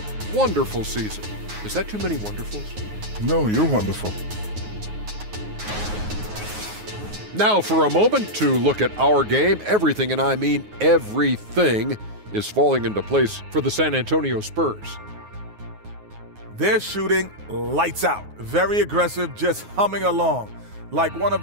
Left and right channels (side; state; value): left; late; 9.5 ms